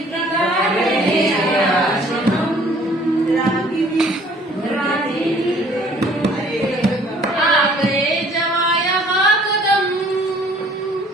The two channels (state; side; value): normal; both; correlation 0.56